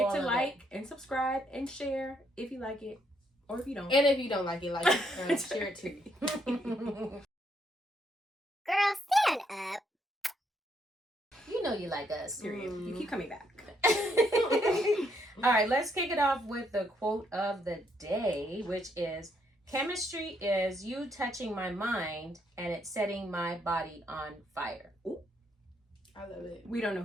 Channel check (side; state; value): both; normal; correlation 0.73